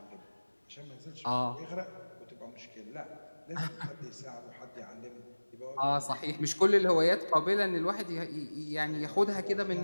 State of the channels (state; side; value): inverted; both; correlation -1.00